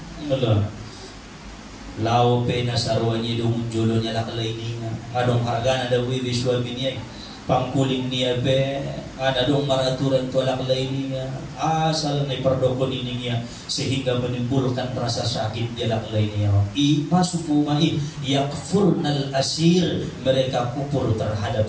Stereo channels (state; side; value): identical; both; correlation 1.00